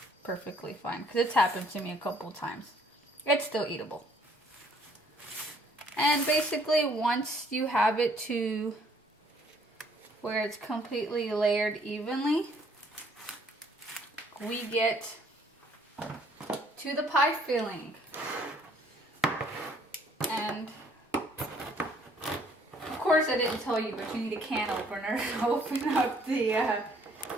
perfectly fine, because it's happened to me a couple times. It's still eatable. And basically once you have it to where it's completely layered evenly, we get to the pie filling. And of course I didn't tell you, but you need a can opener to open up the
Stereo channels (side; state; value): both; normal; correlation 0.62